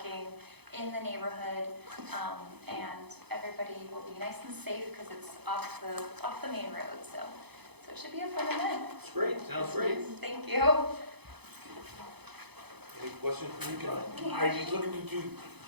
in the neighborhood, and everybody will be nice and safe because it's off the main road. So it should be a fun event. It's great, sounds great. Thank you. Any questions from you, John? Are you looking to do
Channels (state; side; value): late; left; 0.98 ms